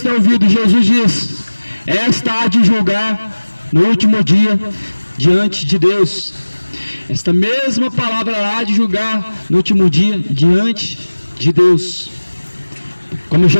ouvindo, Jesus diz, esta há de julgar no último dia, diante de Deus. Esta mesma palavra há de julgar no último dia, diante de Deus. Como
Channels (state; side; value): inverted; both; correlation -1.00